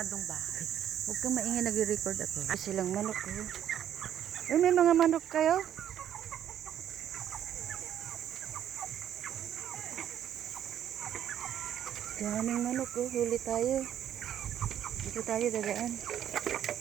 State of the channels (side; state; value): left; quieter; 10.3 dB